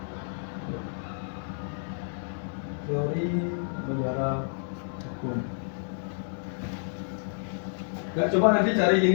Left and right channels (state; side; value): silent; right; digital silence